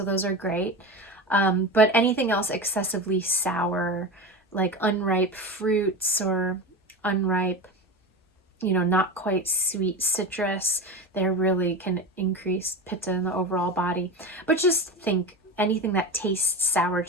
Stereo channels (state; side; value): normal; both; correlation 0.24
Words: those are great. But anything else excessively sour, like unripe fruits or unripe, not quite sweet citrus, they really can increase pitta in the overall body. But just think, anything that tastes sour